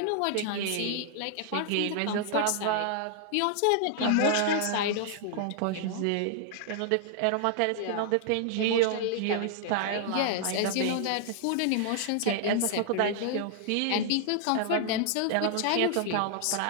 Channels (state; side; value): different; both; correlation 0.00